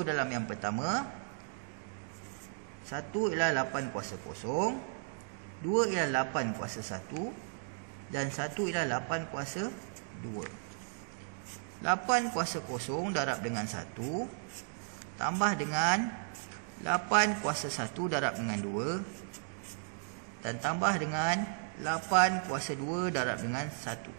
dalam yang pertama. 1 ialah 8 kuasa kosong, 2 ialah 8 kuasa 1, dan 1 ialah 8 kuasa 2. 8 kuasa kosong darab dengan 1 tambah dengan 8 kuasa 1 darab dengan 2, dan tambah dengan 8 kuasa 2 darab dengan 1.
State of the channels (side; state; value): left; silent; digital silence